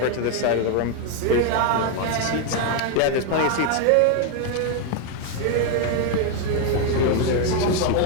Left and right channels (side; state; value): both; different; correlation 0.01